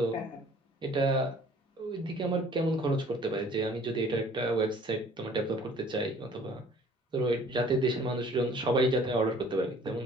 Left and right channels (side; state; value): both; normal; correlation 0.53